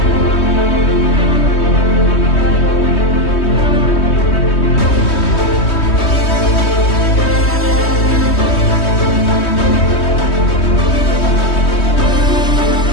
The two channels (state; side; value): late; right; 3.2 ms